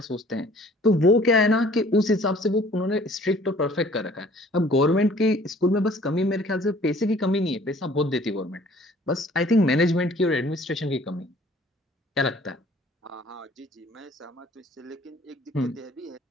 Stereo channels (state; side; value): normal; both; correlation 0.54